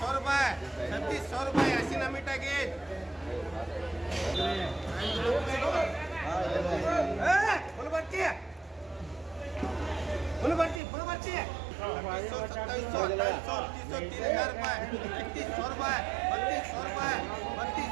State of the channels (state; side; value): drops out; left; at 10.8 s